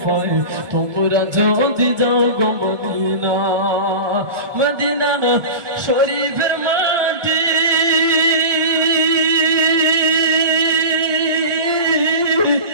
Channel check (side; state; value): left; late; 1.7 ms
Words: তোমরা যদি যাও গো মদিনা মদিনা শরীফের মাটি